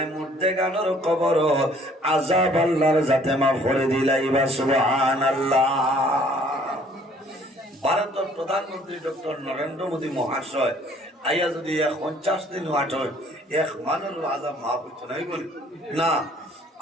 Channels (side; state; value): both; normal; correlation 0.58